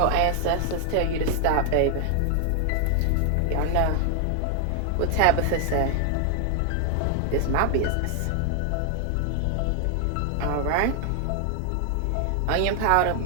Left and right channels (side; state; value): both; different; correlation 0.00